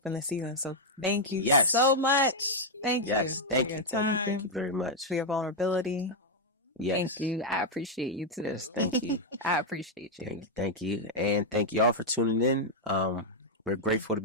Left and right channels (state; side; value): normal; both; correlation -0.01